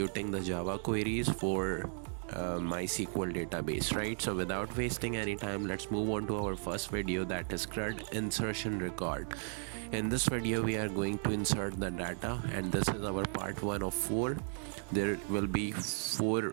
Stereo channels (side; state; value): left; silent; 54 dB below the other